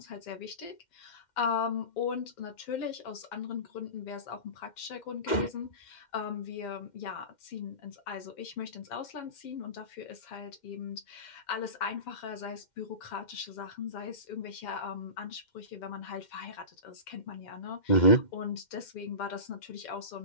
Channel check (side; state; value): right; late; 2.1 ms